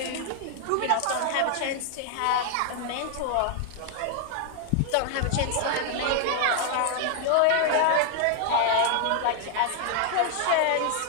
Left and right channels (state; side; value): different; both; correlation 0.00